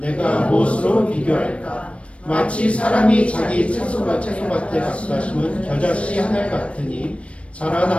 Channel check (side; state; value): right; late; 0.062 ms